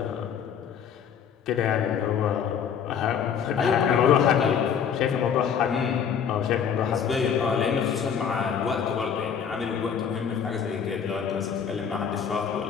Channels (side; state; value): right; quieter; 7.6 dB